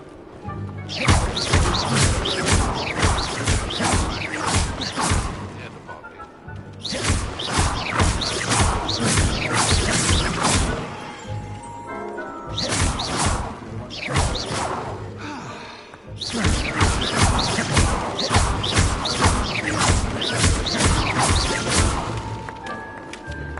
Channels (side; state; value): both; identical; correlation 1.00